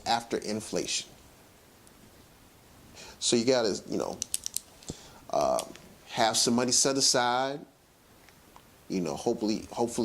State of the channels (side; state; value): both; identical; correlation 1.00